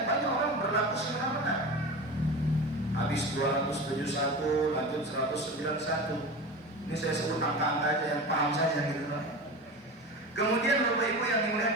banyak orang berlaku semena-mena. Habis 271, lanjut 191. Ini saya sebut angka-angka aja yang paham saja gitu. Kemudian Bapak Ibu yang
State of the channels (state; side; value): normal; both; correlation 0.29